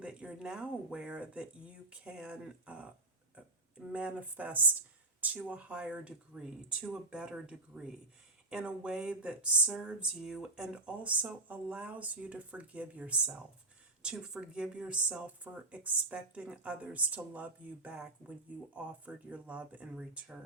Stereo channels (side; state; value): left; quieter; 3.0 dB